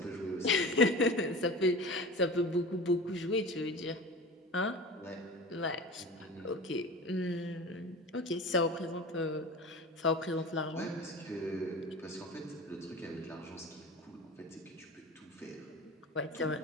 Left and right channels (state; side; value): normal; both; correlation 0.34